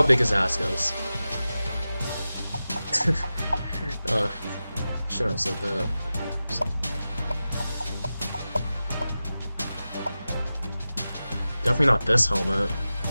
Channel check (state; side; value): inverted; both; correlation -0.94